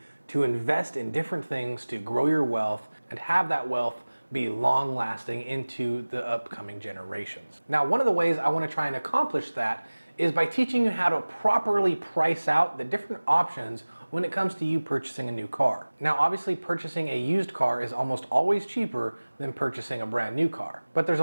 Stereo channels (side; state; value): both; inverted; correlation -1.00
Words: to invest in different things to grow your wealth and have that wealth be long lasting into the upcoming generations. Now, one of the ways I want to try and accomplish that is by teaching you how to properly price out the different options when it comes to you purchasing a new car. Now, obviously purchasing a used car is almost always cheaper than purchasing a brand new car. But there's